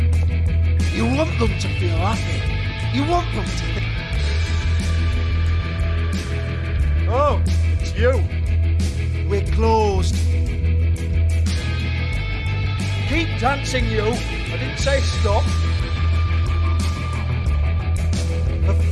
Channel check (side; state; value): both; identical; correlation 1.00